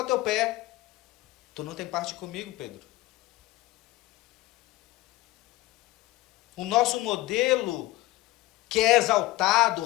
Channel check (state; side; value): quieter; right; 18.0 dB